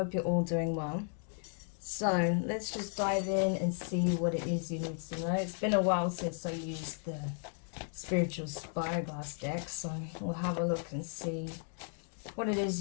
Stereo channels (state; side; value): silent; right; 55 dB below the other